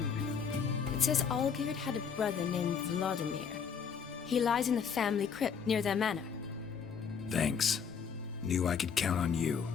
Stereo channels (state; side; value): quieter; right; 6.6 dB